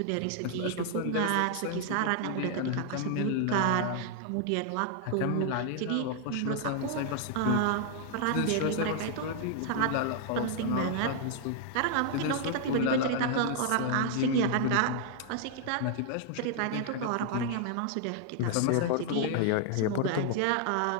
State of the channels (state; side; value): different; both; correlation 0.00